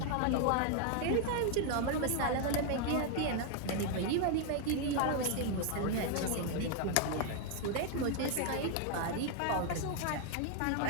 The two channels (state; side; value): different; both; correlation 0.00